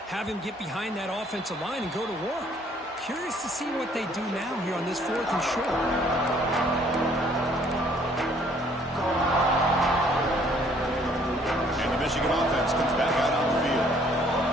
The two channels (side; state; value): both; normal; correlation 0.61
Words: have him get behind that offensive line and go to work. Curious to see what they do now here on this 4th and short. And the Michigan offense comes back out on the field.